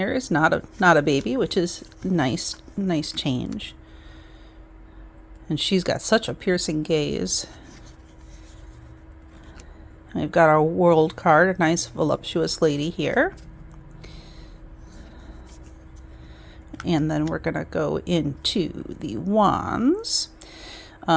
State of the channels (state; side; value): identical; both; correlation 1.00